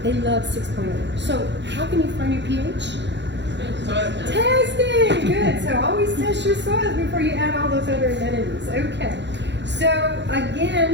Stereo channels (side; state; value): left; late; 0.52 ms